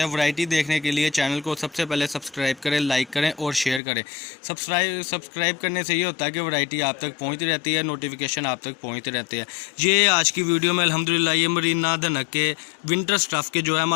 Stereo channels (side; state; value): right; drops out; at 3.8 s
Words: वैरायटी देखने के लिए चैनल को सबसे पहले सब्सक्राइब करें, लाइक करें और शेयर करें। सब्सक्राइब करने से ये होता है कि वैरायटी आप तक पहुँचती रहती है, नोटिफिकेशन आप तक पहुँचते रहते हैं। ये आज की वीडियो में अल्हम्दुलिल्लाह ये मरीना धनक के विंटर स्टफ़ के जो है